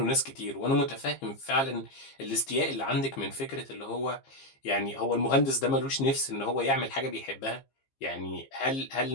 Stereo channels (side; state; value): right; late; 15 ms